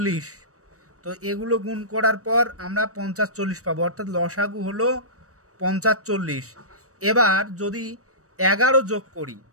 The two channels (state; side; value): late; left; 0.65 ms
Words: তো এগুলো গুণ করার পর আমরা 50, 40 পাবো, অর্থাৎ লসাগু হলো 50, 40। এবার যদি 11 যোগ করি